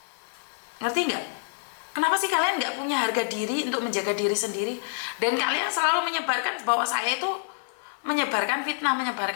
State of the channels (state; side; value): silent; right; 57 dB below the other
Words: Ngerti nggak? Kenapa sih kalian nggak punya harga diri untuk menjaga diri sendiri? Dan kalian selalu menyebarkan bahwa saya itu menyebarkan fitnah.